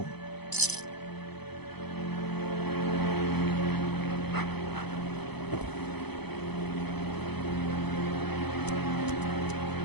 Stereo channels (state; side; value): late; right; 0.98 ms